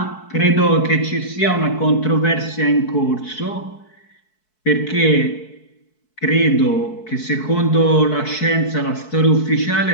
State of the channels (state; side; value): late; right; 4.6 ms